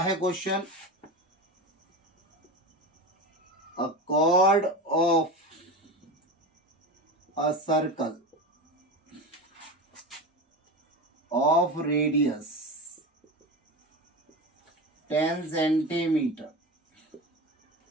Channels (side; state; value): both; normal; correlation 0.25